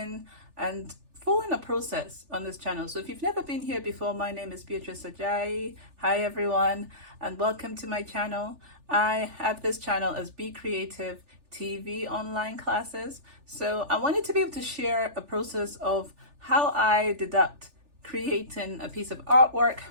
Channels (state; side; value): late; left; 3.4 ms